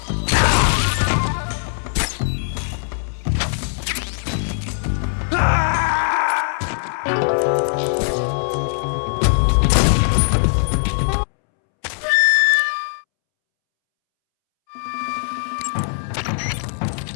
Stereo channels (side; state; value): right; silent; 66 dB below the other